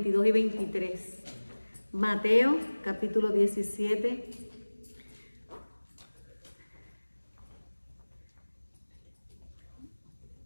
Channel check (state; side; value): inverted; both; correlation -1.00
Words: y 23. Mateo capítulo 17.